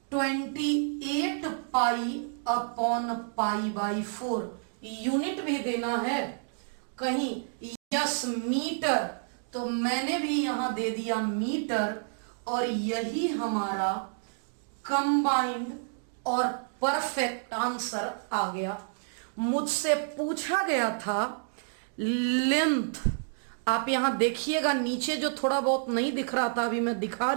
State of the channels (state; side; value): silent; left; digital silence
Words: 28 pi upon pi by 4। Unit भी देना है कहीं, यस मीटर, तो मैंने भी यहां दे दिया मीटर, और यही हमारा कंबाइंड और परफेक्ट आंसर आ गया। मुझसे पूछा गया था लेंथ, आप यहां देखिएगा नीचे जो थोड़ा बहुत नहीं दिख रहा था अभी मैं दिखा